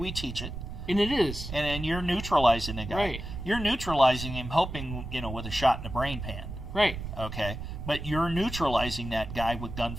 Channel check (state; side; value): noise; right; rumble, 8 dB below the sound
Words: teach it. And it is. And you're neutralizing the guy. Right. You're neutralizing him, hoping with a shot in the brain pan. Right. Okay. But you're neutralizing that guy with